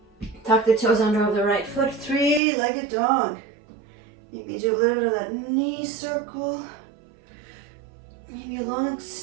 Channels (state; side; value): drops out; left; at 2.4 s